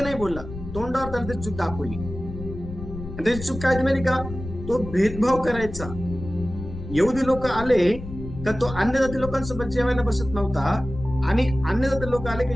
नाही बोलला, तोंडावर त्याला त्याची चूक दाखवली. त्याची चूक काय माहिती का? तो भेदभाव करायचा. यहुदी लोक आले का तो अन्य जाती लोकांसोबत जेवायला बसत नव्हता, आणि अन्य जाती लोक आले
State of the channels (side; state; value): left; noise; rumble, 10 dB below the sound